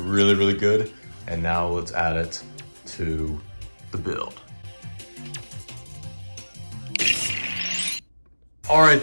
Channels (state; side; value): inverted; both; correlation -1.00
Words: really good. And now let's add it to the build. Alright,